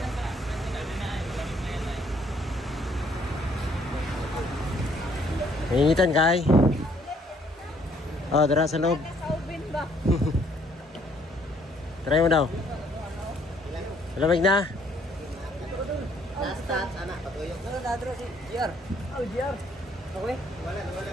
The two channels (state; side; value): normal; both; correlation 0.65